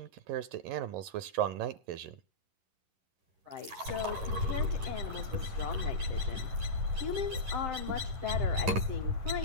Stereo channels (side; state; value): left; late; 11 ms